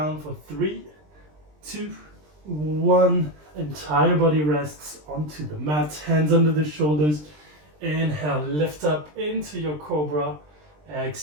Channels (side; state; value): left; late; 20 ms